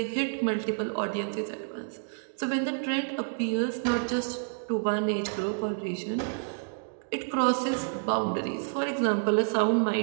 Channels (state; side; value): silent; left; digital silence